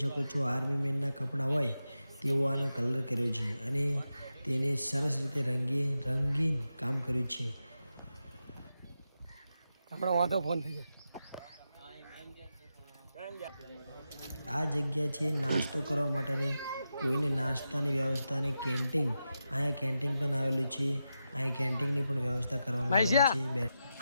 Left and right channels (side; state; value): both; inverted; correlation -0.89